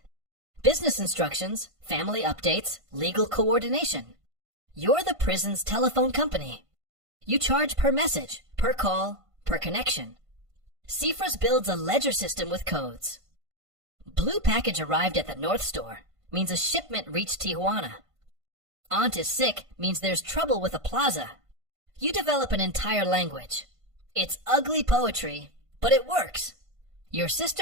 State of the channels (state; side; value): late; left; 1.5 ms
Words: Business instructions, family updates, legal coordination. You're the prison's telephone company. You charge per message, per call, per connection. Cifras builds a ledger system with codes. Blue package arrived at the North Store means a shipment reached Tijuana. Aunt is sick means there's trouble with a plaza. You develop an entire language. It's ugly poetry, but it works. Your